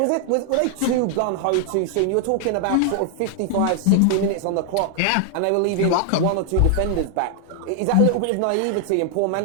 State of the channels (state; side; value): different; both; correlation 0.00